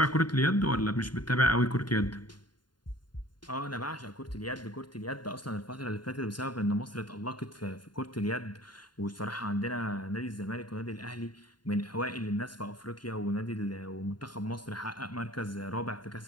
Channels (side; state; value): right; late; 0.71 ms